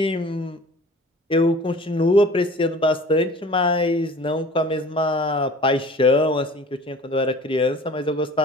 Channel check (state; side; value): normal; both; correlation 0.45